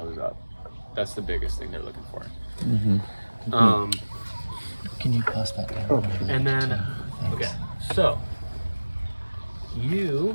up. That's the biggest thing they're looking for. Can you pass that down? And then, okay, so you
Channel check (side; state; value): both; inverted; correlation -1.00